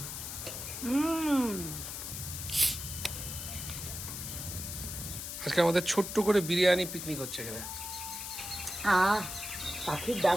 আজকে আমাদের ছোট্ট করে বিরিয়ানি পিকনিক হচ্ছে এখানে। পাখির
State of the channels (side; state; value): left; noise; hiss, 7 dB below the sound